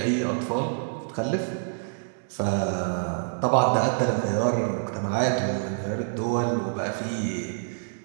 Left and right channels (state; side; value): silent; left; digital silence